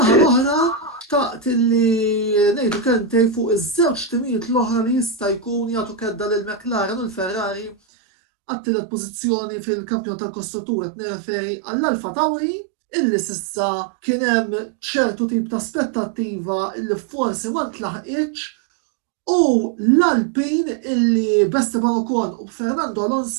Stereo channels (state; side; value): drops out; left; at 7.8 s